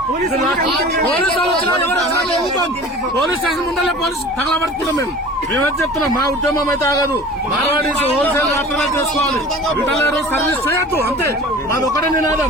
పోలీస్ స్టేషన్ ముందరే పోలీసు తగలబెడుతున్నాం. మేమేం చెప్తున్నాం, మా ఉద్యమం అయితే ఆగదు. మార్వాడీస్ హోల్సేల్ మాత్రమే చేసుకోవాలి. రిటైలర్ సర్వీస్ చేయొద్దు. అంతే, మాది ఒకటే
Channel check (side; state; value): both; normal; correlation 0.41